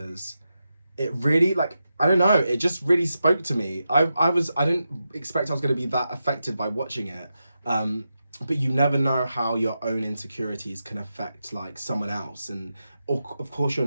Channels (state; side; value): inverted; both; correlation -0.88